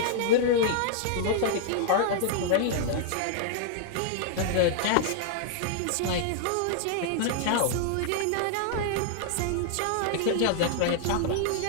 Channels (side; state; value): both; different; correlation -0.01